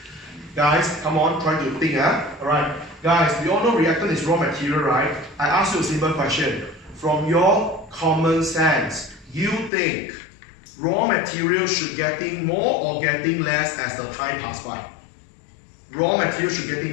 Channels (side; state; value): right; drops out; at 9.7 s